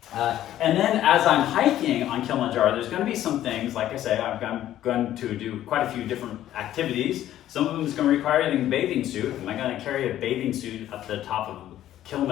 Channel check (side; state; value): right; quieter; 12.6 dB